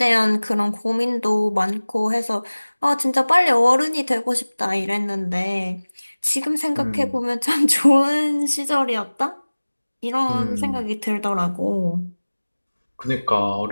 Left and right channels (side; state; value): both; inverted; correlation -1.00